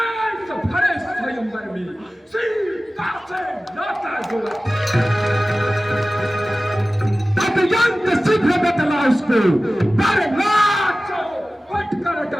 भरे स्वयंवर में सीता से नाता जोड़ा? अत्यंत शीघ्र बतला उसको, पर नाचो पट कर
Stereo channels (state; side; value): normal; both; correlation 0.96